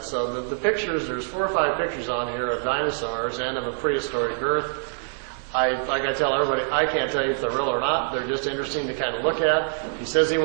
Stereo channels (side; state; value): left; silent; digital silence